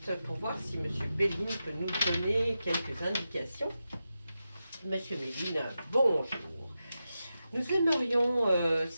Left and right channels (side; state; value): both; inverted; correlation -0.90